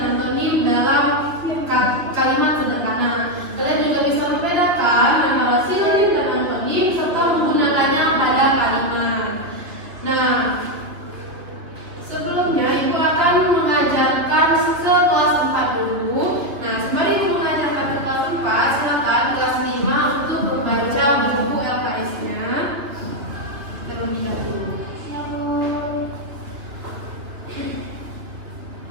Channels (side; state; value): left; late; 2.7 ms